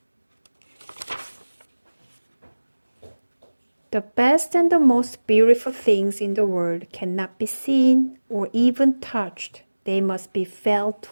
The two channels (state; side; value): inverted; both; correlation -1.00